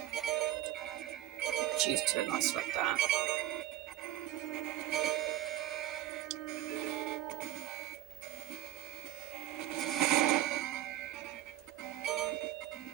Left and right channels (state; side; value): quieter; left; 13.5 dB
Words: choose to like select that.